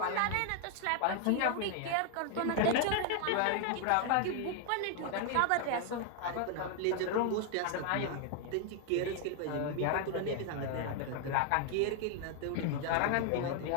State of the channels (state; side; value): different; both; correlation 0.00